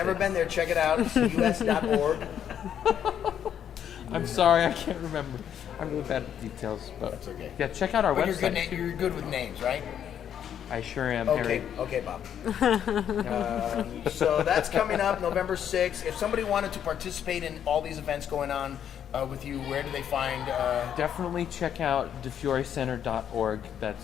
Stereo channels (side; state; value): right; quieter; 9.3 dB